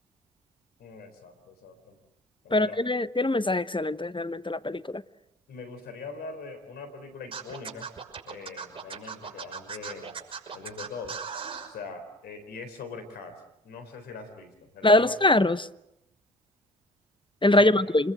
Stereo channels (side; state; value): both; normal; correlation 0.46